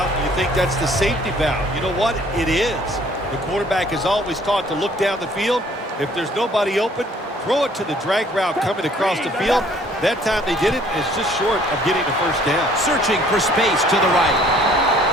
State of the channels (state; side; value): normal; both; correlation 0.58